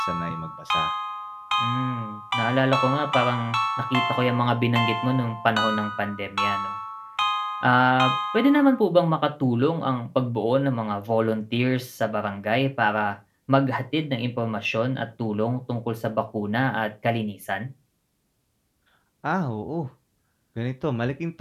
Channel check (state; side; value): identical; both; correlation 1.00